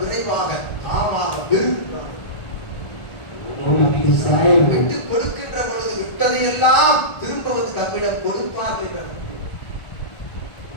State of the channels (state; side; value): late; right; 1.4 ms